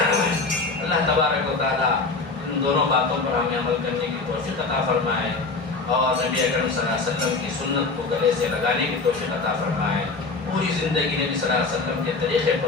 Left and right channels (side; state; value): right; quieter; 3.9 dB